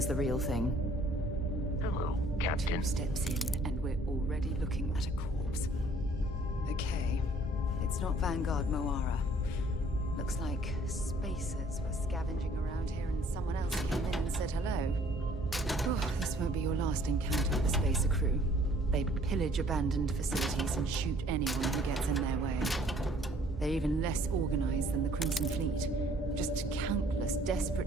the real thing. Hello, Captain. 2 steps in, and we're already looking at a corpse. Okay, it's not Vanguard Moara. Looks like spacers were scavenging around here and someone else came in and said hello. Oh, this won't be your last encounter with the spacer crew. They pillage abandoned facilities and shoot anyone who gets in their way. They're even less organized than the Crimson Fleet. Just countless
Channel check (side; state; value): both; normal; correlation 0.58